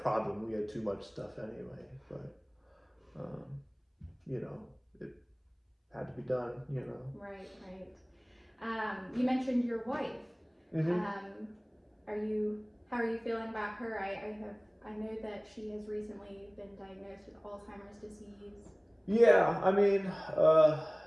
We had too much stuff anyway, but, it had to be done, Right. You mentioned your wife. Mm-hmm. How are you feeling about her? I know that she has recently been diagnosed with Alzheimer's disease. Yeah,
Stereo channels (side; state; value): both; identical; correlation 1.00